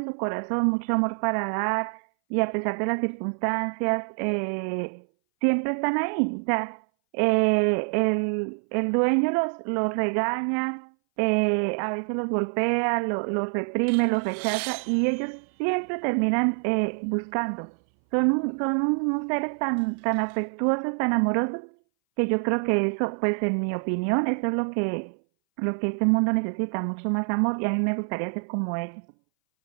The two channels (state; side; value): silent; left; 60 dB below the other